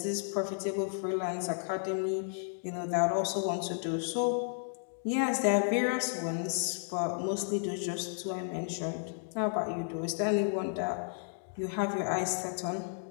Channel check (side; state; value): right; silent; digital silence